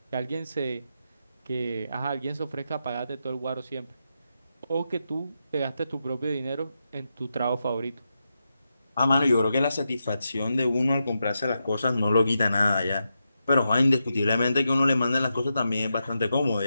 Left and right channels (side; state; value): both; inverted; correlation -0.87